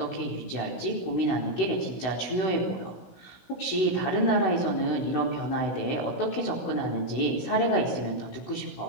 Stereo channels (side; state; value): right; late; 16 ms